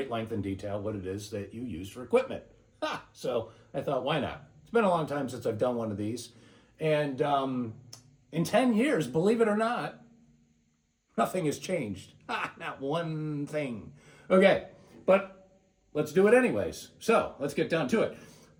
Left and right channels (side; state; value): both; identical; correlation 1.00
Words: length and detail, what it is that you use for equipment. So I thought, why not? It's been a long time since I've done one of these. And in 10 years, believe it or not, nothing has changed. Not one thing. Okay, but let's do it anyways. So let's get down to it.